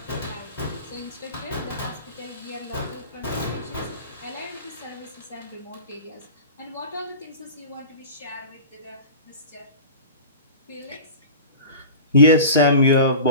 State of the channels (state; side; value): inverted; both; correlation -0.35